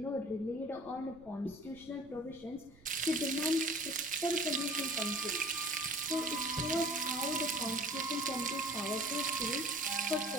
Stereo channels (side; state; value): right; noise; rumble, 24 dB below the sound